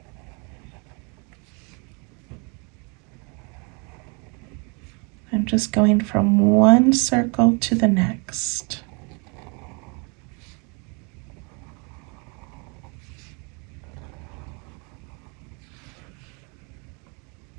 I'm just going from one circle to the next.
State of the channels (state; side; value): quieter; left; 32.9 dB